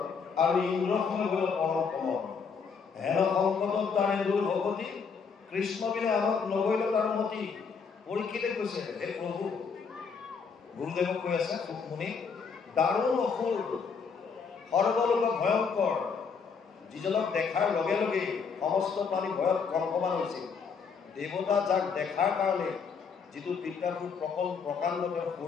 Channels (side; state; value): right; quieter; 5.7 dB